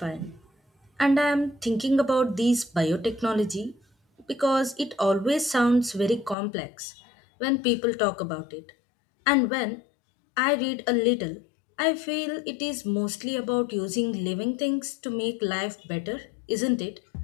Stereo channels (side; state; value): right; drops out; at 6.4 s